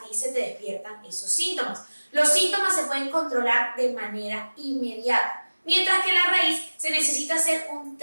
se te despiertan esos síntomas. Los síntomas se pueden controlar de manera inmediata, mientras que la raíz se necesita hacer un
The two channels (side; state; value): both; inverted; correlation -1.00